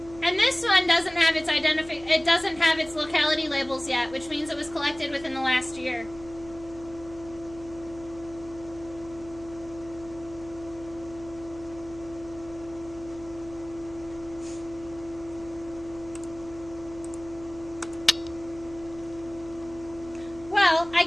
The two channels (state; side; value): noise; right; hum, 17 dB below the sound